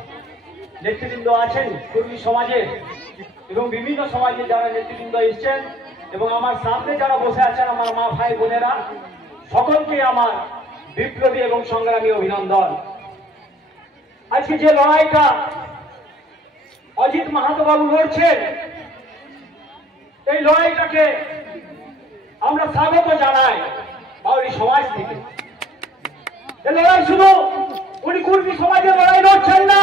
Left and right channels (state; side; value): normal; both; correlation 0.58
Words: নেতৃবৃন্দ আছেন কর্মী সমাজের এবং বিভিন্ন সমাজে যারা নেতৃবৃন্দ এসছেন এবং আমার সামনে যারা বসে আছেন আমার মা ভাই বোনেরা, সকলকে আমার বিপ্লবী এবং সংগ্রামী অভিনন্দন। আজকে যে লড়াইটা অজিত মাহাতো বাবু লড়ছেন, এই লড়াইটাকে আমরা স্বাগত জানাই বাউরি সমাজ থেকে। এই লড়াই শুধু উনি কুর্মী সমাজের লড়াই লড়ছেন না,